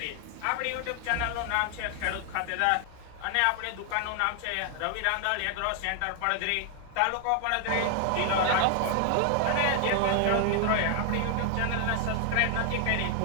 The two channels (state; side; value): different; both; correlation 0.00